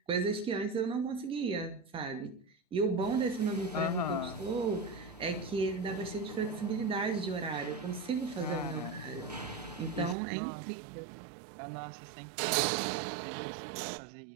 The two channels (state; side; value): drops out; left; at 10.2 s